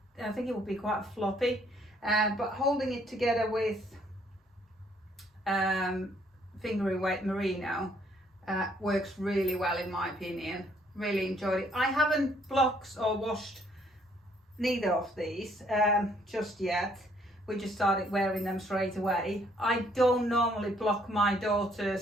I think it would be quite floppy, but holding it together with fingering weight merino works really well in my opinion. Really enjoyed it. I haven't blocked or washed neither of these just yet. We just started wearing them straight away. I don't normally block my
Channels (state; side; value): normal; both; correlation 0.66